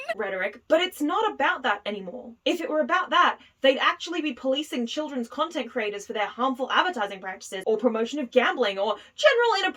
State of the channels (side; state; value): both; identical; correlation 1.00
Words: rhetoric, but it's not about that anymore. If it were about that, they'd actually be policing children's content creators for their harmful advertising practices or promotion of gambling or general